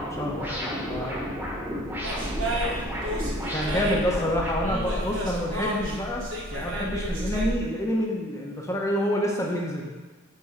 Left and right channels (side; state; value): both; normal; correlation 0.55